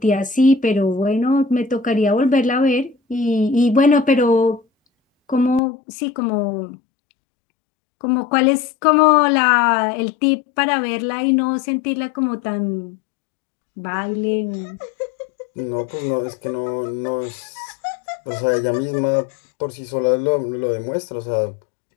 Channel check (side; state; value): right; drops out; at 5.6 s